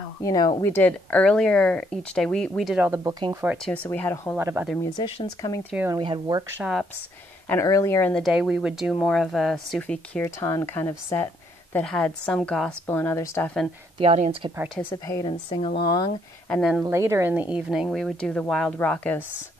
we did earlier each day, we did all the booking for it too, so we had a whole lot of other musicians coming through, and we had workshops. And earlier in the day, we would do more of a Sufi Kirtan kind of set that had some gospel and other stuff, and the audience could participate and sing along. And then later in the evening, we would do the wild, raucous,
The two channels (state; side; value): normal; both; correlation 0.70